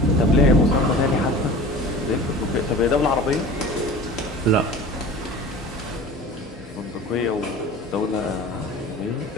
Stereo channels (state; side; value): normal; both; correlation 0.39